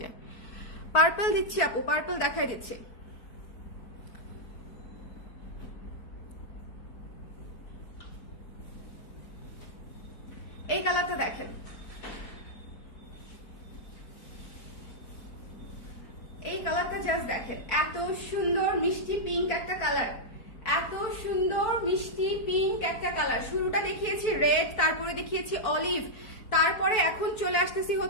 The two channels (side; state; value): right; late; 4.6 ms